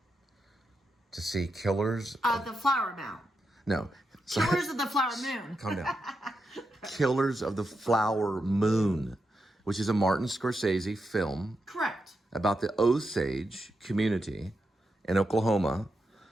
to see Killers of the Flower Moon. No. Killers of the Flower Moon. Calm down. Killers of the Flower Moon, which is a Martin Scorsese film. Correct. About the Osage community in Oklahoma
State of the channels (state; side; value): normal; both; correlation 0.86